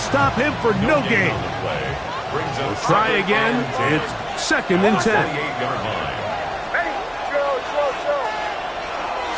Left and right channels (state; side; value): identical; both; correlation 1.00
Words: him for no gain. We'll try again. It's 2nd and 10.